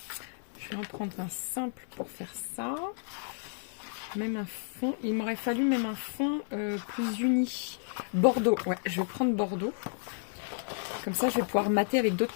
Je vais en prendre un simple pour faire ça. Même un fond. Il m'aurait fallu même un fond plus uni. Bordeaux. Ouais, je vais prendre Bordeaux. Comme ça, je vais pouvoir mater avec d'autres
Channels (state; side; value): silent; right; 57 dB below the other